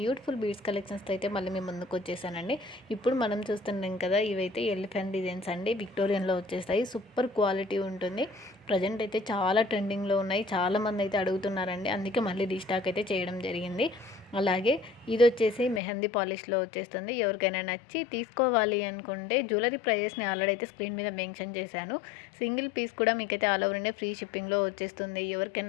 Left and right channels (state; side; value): drops out; right; at 15.8 s